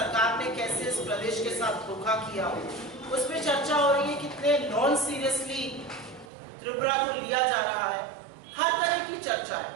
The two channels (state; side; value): drops out; left; at 6.3 s